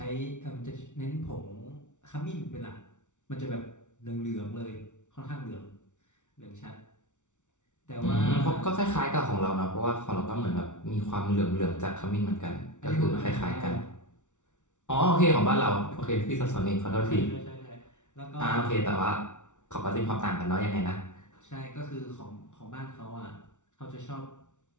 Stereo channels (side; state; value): right; late; 0.85 ms